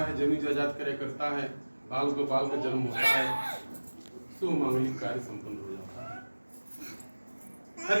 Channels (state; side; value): inverted; both; correlation -1.00